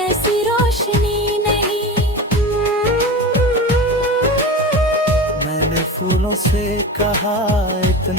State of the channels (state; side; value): normal; both; correlation 0.28